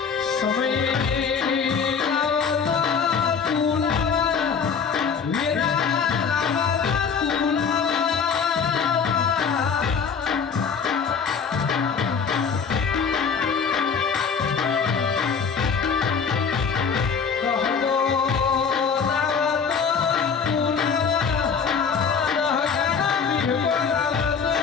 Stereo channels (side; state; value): right; quieter; 6.1 dB